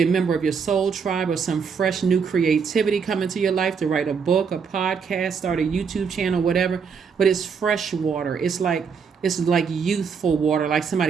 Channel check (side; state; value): left; quieter; 6.1 dB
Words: a member of your soul tribe, or some fresh new creativity coming to your life to write a book, a podcast, start a YouTube channel, whatever. But it's fresh water. It's like youthful water, like